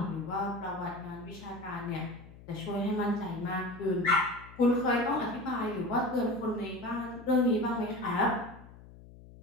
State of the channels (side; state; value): left; noise; hum, 19 dB below the sound